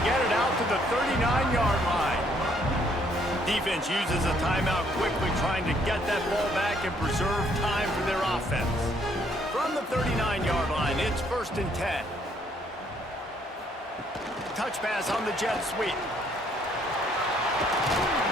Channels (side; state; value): both; normal; correlation 0.67